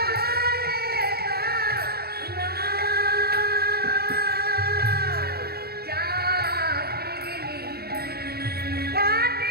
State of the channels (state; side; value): late; left; 0.46 ms